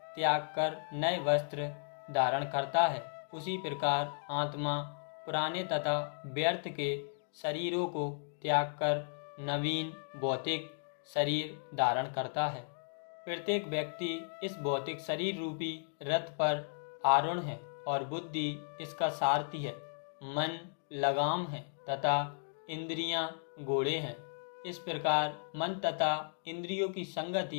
त्याग कर नए वस्त्र धारण करता है, उसी प्रकार आत्मा पुराने तथा व्यर्थ के शरीरों को त्याग कर नवीन भौतिक शरीर धारण करता है। प्रत्येक व्यक्ति इस भौतिक शरीर रूपी रथ पर आरूढ़ है और बुद्धि इसका सारथी है। मन लगाम है तथा इंद्रियां घोड़े हैं। इस प्रकार मन तथा इंद्रियों की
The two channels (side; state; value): right; silent; digital silence